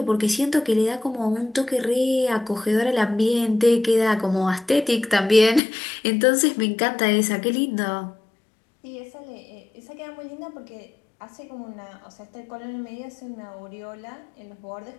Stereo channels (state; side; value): drops out; right; at 5.6 s